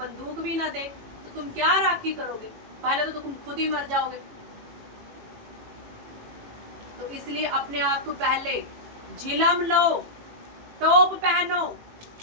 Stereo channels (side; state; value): left; late; 18 ms